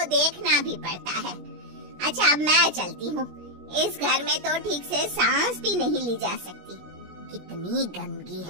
देखना भी पड़ता है। अच्छा अब मैं चलती हूँ, इस घर में तो ठीक से सांस भी नहीं ली जा सकती, कितनी गंदगी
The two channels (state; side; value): late; left; 17 ms